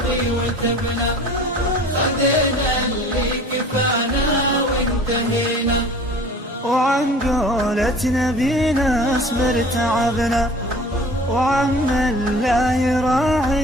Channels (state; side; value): normal; both; correlation 0.45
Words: وتبنا، خذينا اللي كفانا وانتهينا. وعن قولة نبينا اصبر تعبنا، وعم الله